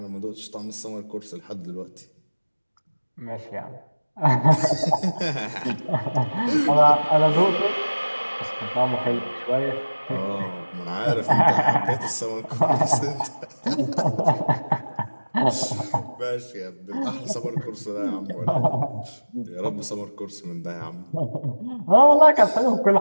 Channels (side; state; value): both; inverted; correlation -1.00